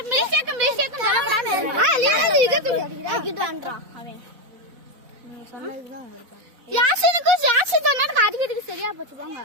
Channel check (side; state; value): left; late; 4.0 ms